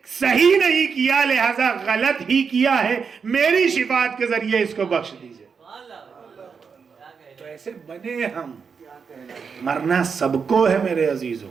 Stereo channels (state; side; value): quieter; left; 5.9 dB